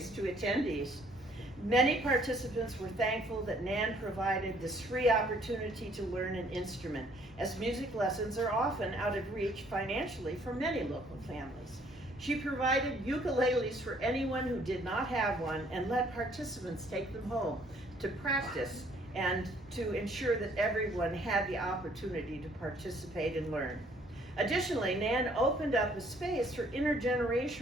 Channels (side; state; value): both; normal; correlation 0.62